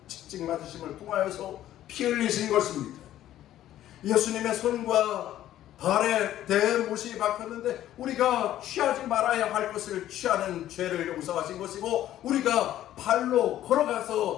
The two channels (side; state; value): right; quieter; 12.7 dB